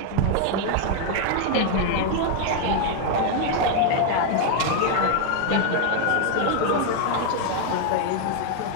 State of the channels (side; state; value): both; different; correlation 0.00